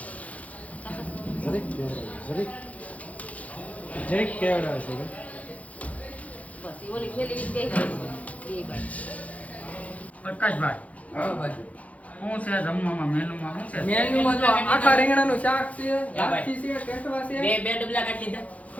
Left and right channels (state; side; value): late; right; 0.068 ms